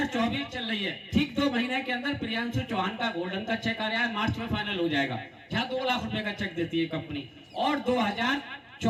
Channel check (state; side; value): identical; both; correlation 1.00